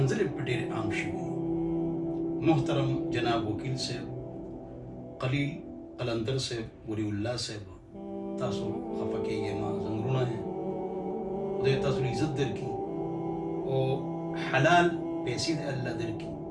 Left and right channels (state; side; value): identical; both; correlation 1.00